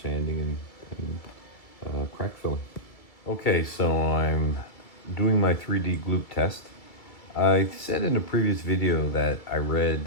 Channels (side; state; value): right; late; 2.3 ms